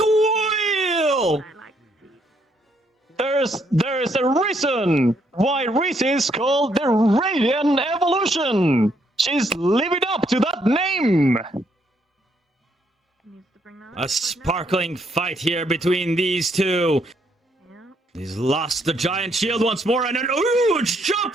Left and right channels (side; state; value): both; normal; correlation 0.72